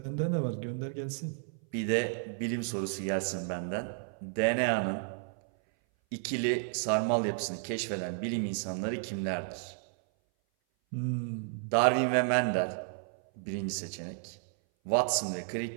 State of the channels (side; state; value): left; silent; 56 dB below the other